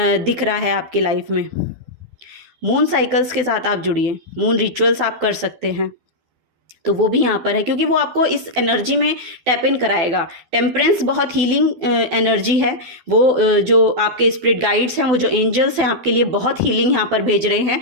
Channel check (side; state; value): left; late; 12 ms